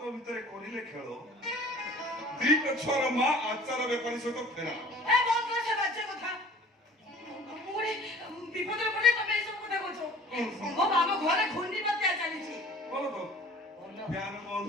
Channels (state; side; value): normal; both; correlation 0.48